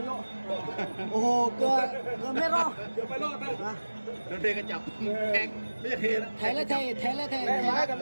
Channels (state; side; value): inverted; both; correlation -1.00